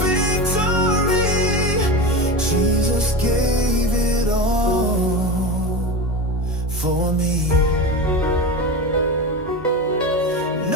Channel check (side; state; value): both; normal; correlation 0.24